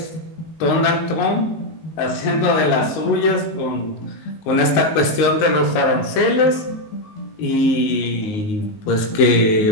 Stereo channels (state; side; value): late; right; 19 ms